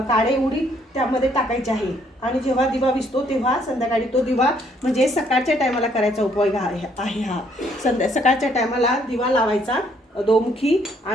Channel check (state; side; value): normal; both; correlation 0.67